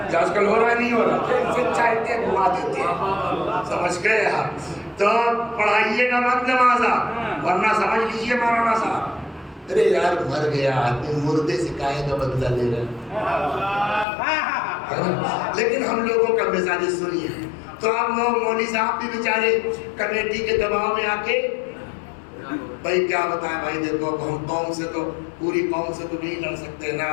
کیا آج کل ہو رہا ہے نہیں ہو رہا، جیسے چاہتے ہیں گھما دیتے ہیں۔ سمجھ گئے آپ؟ تو پڑھائیے گا مت نمازہ، ورنہ سمجھ لیجئے مولانا صاحب، ارے یار مر گیا آدمی، مردے سے کاہے کا بدلہ لے رہے ہیں۔ لیکن ہم لوگوں کا مزاج سنیے، تو اب مولوی صاحب بھی بیچارے کمیٹی کے دباؤ میں آ کے بھائی کیا بتائیں بھائی، دیکھو ہم قوم سے تو پوری قوم سے تو نہیں لڑ سکتے نا،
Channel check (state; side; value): drops out; right; at 14.1 s